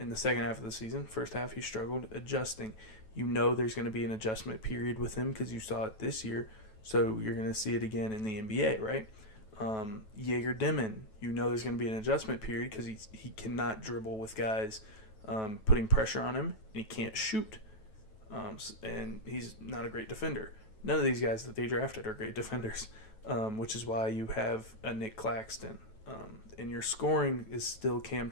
the second half of the season. First half, he struggled adjusting. You know there's going to be an adjustment period with him because you saw it this year. So you're going to see it again in the NBA, right? Jaeger Dimon, you know there's going to be an adjustment period because he cannot dribble with guys putting pressure on him, and he can't shoot. And he's not a great defender. None of these guys that they drafted are great defenders, which is why you have a Nick Claxton. And your scoring is still Cam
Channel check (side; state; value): right; late; 9.2 ms